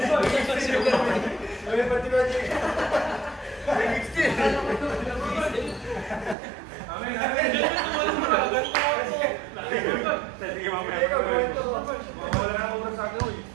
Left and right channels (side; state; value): left; drops out; at 6.4 s